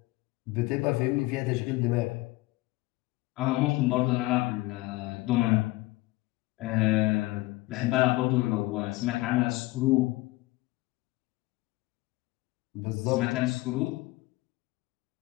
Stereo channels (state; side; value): quieter; right; 20.3 dB